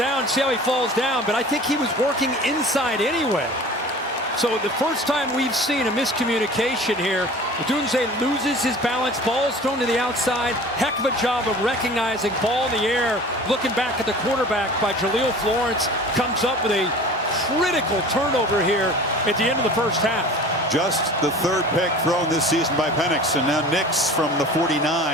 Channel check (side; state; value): both; normal; correlation 0.42